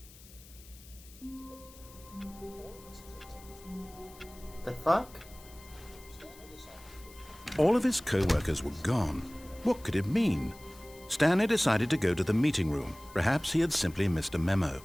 The fuck? All of his co-workers were gone. What could it mean? Stanley decided to go to the meeting room. Perhaps he had simply missed a memo.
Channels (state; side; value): noise; left; hiss, 22 dB below the sound